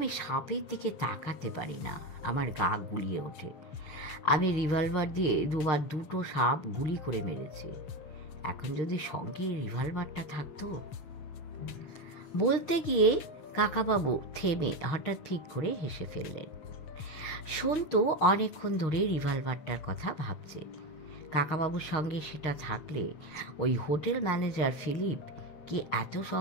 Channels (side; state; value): right; late; 6.5 ms